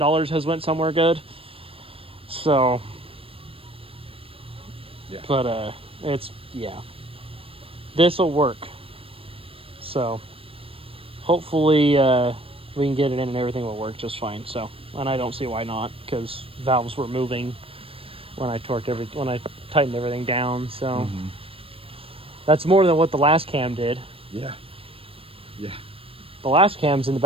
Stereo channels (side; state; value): left; late; 0.27 ms